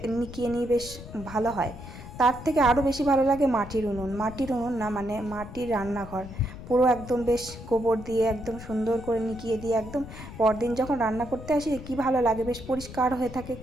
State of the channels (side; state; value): left; noise; rumble, 13 dB below the sound